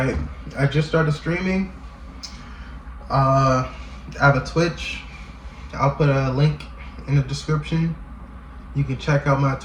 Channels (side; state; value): both; identical; correlation 1.00